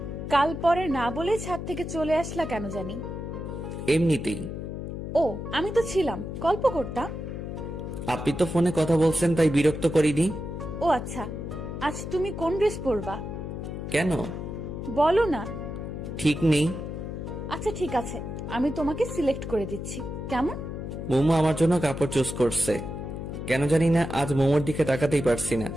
কাল পরে না বলে ছাদ থেকে চলে আসলা কেন জানি? এমনিতেই। ও, আমি তো ছিলাম, গল্প করতাম। আপনি তো ফোনে কথা বলছেন তাই বিরক্ত করিনি। ও আচ্ছা, আজ তুমি কোন ড্রেস পরবা? কেন? বলো না। ঠিক নেই। আচ্ছা ঠিক আছে, আমি তোমাকে সিলেক্ট করে দিচ্ছি, কেমন? মোমো আমার জন্য কাপড় চুজ করছে। কেন জানি না আজ মোমোর দিকে তাকাতেই পারছি না।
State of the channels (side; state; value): left; noise; hum, 6 dB below the sound